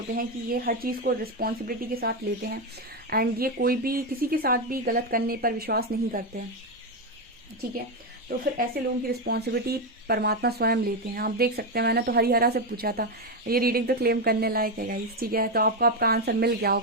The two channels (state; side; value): normal; both; correlation 0.08